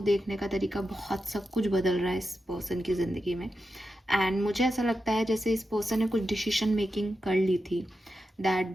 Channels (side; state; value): both; normal; correlation 0.89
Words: देखने का तरीका, बहुत सब कुछ बदल रहा है इस पर्सन की ज़िंदगी में। एंड मुझे ऐसा लगता है जैसे इस पर्सन ने कुछ डिसीजन मेकिंग कर ली थी, दैट